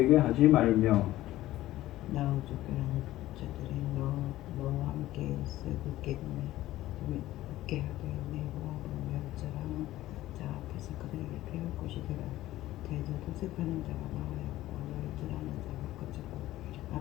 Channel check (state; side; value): quieter; right; 15.4 dB